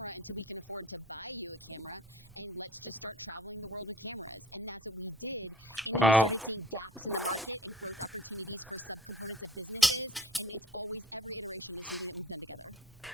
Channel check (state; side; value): noise; right; rumble, 24 dB below the sound